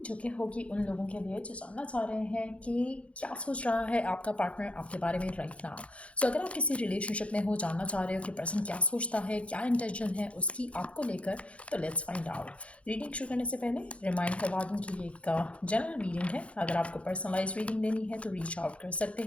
जो कि होगी उन लोगों के लिए जो जानना चाह रहे हैं कि क्या सोच रहा है आपका पार्टनर आपके बारे में राइट नाउ। सो अगर आप किसी रिलेशनशिप में हो, जानना चाह रहे हो कि पर्सन क्या सोचता है, क्या इंटेंशन है उसकी आपको लेकर, तो लेट्स फाइंड आउट। रीडिंग शुरू करने से पहले रिमाइंड करवा दूँ कि ये एक जनरल रीडिंग है। अगर आपको पर्सनलाइज रीडिंग लेनी है तो रीच आउट कर सकते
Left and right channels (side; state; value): right; late; 0.062 ms